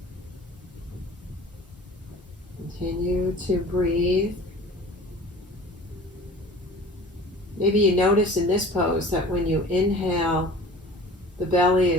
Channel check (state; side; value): normal; both; correlation 0.43